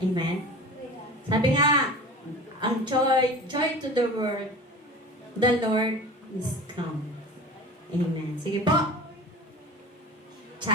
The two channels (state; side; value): normal; both; correlation 0.36